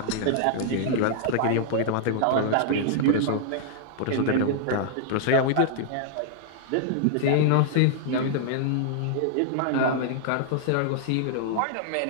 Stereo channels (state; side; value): different; both; correlation -0.01